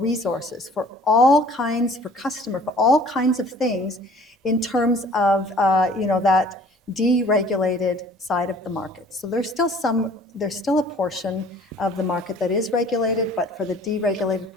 for all kinds, for customer, for all kinds of things in terms of that deregulated side of the market. So there's still a portion of the market that is regulated, but for the deregulated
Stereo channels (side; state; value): both; normal; correlation 0.52